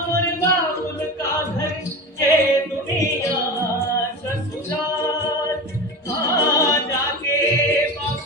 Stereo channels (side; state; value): both; normal; correlation 0.27